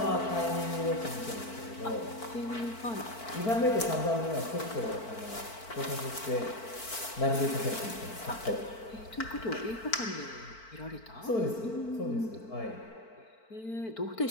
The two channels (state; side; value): late; right; 4.5 ms